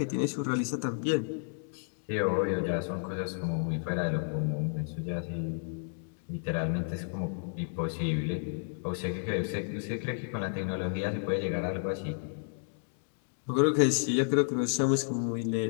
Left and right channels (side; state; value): right; silent; digital silence